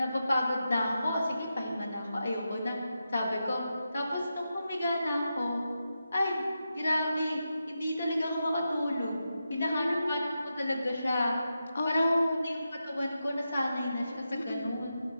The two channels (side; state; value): both; inverted; correlation -0.88